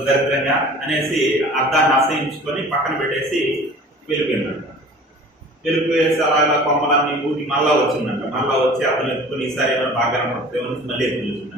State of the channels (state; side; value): normal; both; correlation 0.44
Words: దరిద్రంగా అనేసి అర్థాన్ని అసహించుకొని పక్కన పెట్టేసి వెళ్ళిపోయిందంట. వెళ్ళిపోయేసి అలా కొమ్మలన్నీ ఊటి మళ్ళా వచ్చిందంట. మళ్ళా వచ్చి అర్థం ఎత్తుకొని ఈసారి ఏమైనా బాగా కనపడుతుందేమో మళ్ళీ ఎత్తుకు